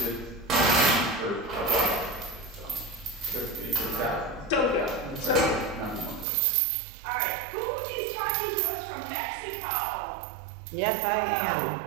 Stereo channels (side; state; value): left; drops out; at 6.2 s